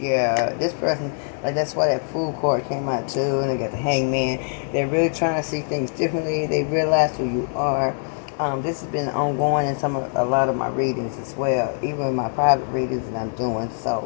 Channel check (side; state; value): right; silent; 63 dB below the other